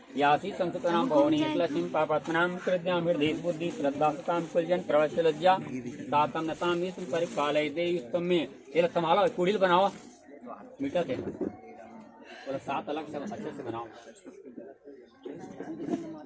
यासी संस्कृतनाम भवनी लक्ष्मी पापात्मनाम कृत्याम हृदय बुद्धि श्रद्धा सताम कुलजन प्रवश्य लज्जा तातम नताम विष्णु परिपालय देवी तम्मे। ये लोग संभालो, कुड़ील बनाओ मीठा थे बोला 7 अलग सब अच्छे से बनाओ।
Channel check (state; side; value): identical; both; correlation 1.00